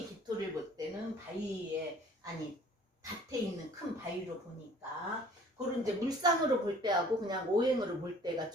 기토를 볼 때는 바위에, 아니 밭에 있는 큰 바위로 보니까, 그런 이제 물상으로 볼 때하고 그냥 오행으로 볼 때가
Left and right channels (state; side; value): normal; both; correlation 0.52